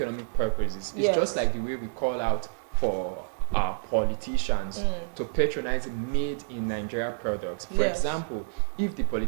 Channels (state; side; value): silent; left; digital silence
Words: purposes. It's yes. just like the way we call out for our politicians to patronize made in Nigeria products. For yes. example, if the